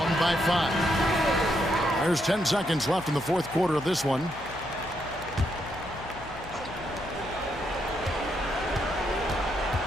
by 5. There's 10 seconds left in the fourth quarter of this one.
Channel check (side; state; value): left; noise; hum, 16 dB below the sound